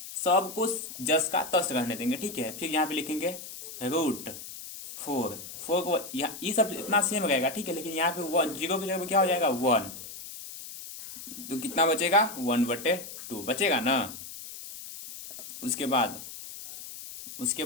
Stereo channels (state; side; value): noise; left; hiss, 12 dB below the sound